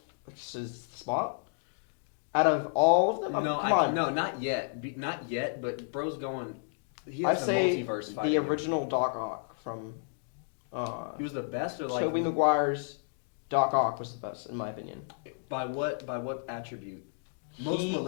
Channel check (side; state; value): right; silent; digital silence